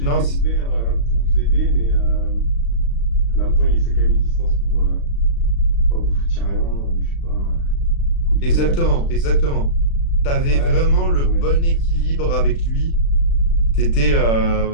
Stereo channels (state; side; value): late; right; 36 ms